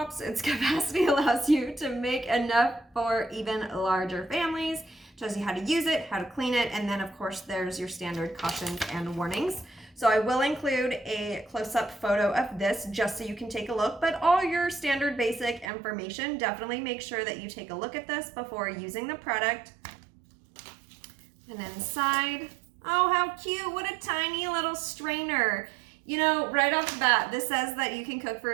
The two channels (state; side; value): drops out; left; at 15.7 s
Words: Its capacity allows you to make enough for even larger families. Shows you how to use it, how to clean it, and then of course there's your standard cautions and warnings. So I will include a close-up photo of this just so you can take a look, but all your standard basic information, definitely make sure that you take a look at this before using the product. And inside, oh how cute, what a tiny little strainer. Right off the bat, this says that you can cook for